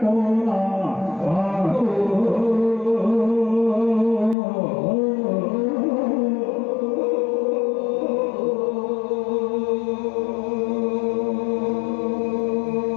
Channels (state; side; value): drops out; right; at 4.4 s